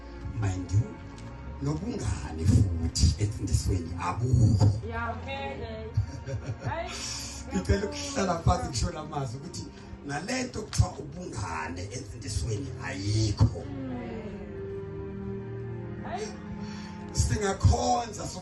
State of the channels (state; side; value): identical; both; correlation 1.00